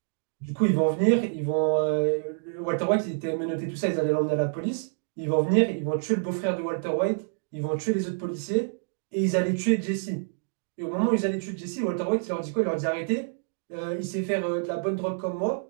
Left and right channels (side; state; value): left; silent; digital silence